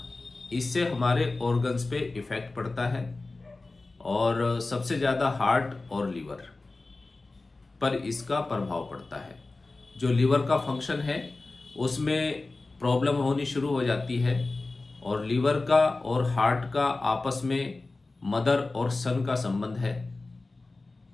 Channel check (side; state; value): right; quieter; 3.3 dB